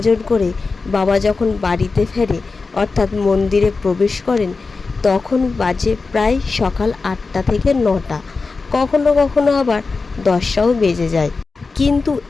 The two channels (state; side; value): quieter; right; 4.2 dB